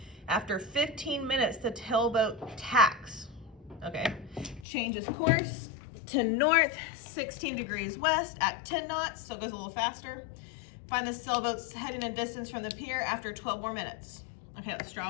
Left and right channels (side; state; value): right; drops out; at 4.7 s